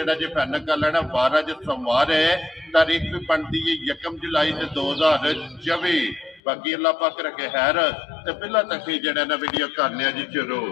जी फाइनल कर लेना। 12 जो सोमवार है, तारीख भी बनती है 1 जुलाई 2024। बाकी अल्लाह पाक रखे खैर ते पहला तक ही जेड़ा ना वीडियो करने जी शुरू।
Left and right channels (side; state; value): right; drops out; at 6.4 s